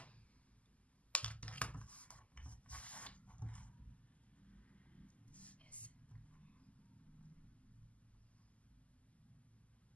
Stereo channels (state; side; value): late; right; 0.068 ms